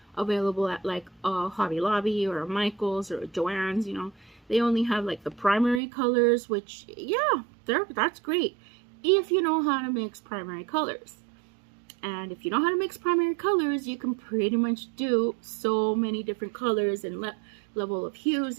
available at like a Hobby Lobby or a Michael's or a Joann's, you know. They only have like the primary colors, which, yeah, that's great if you know how to mix primary colors. And if you know how to mix primary colors, you can pretty much do so many different colors and level of hues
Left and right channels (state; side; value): drops out; left; at 5.8 s